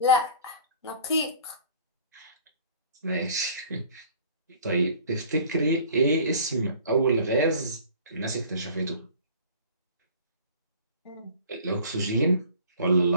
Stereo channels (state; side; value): inverted; both; correlation -0.48